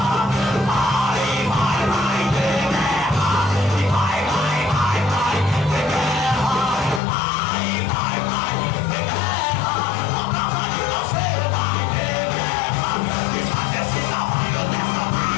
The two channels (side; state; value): right; drops out; at 7.0 s